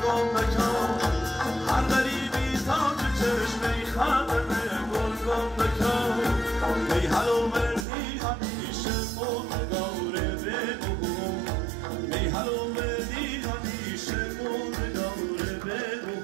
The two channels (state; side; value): drops out; left; at 7.9 s